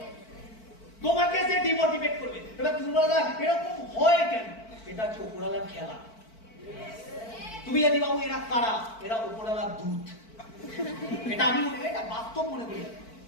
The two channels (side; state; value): right; late; 4.5 ms